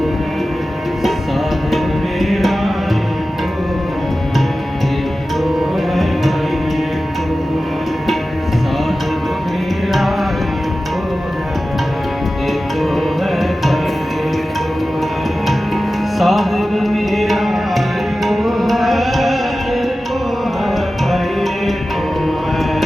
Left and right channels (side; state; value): both; normal; correlation 0.95